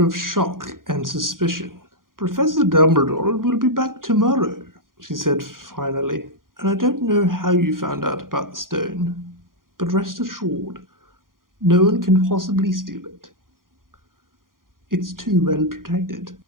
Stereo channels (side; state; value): left; late; 0.90 ms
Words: of shock and suspicion. "Professor Dumbledore will be back tomorrow," she said finally, "and I don't know how you found out about the stone." But rest assured, no one can possibly steal it. It's too well protected.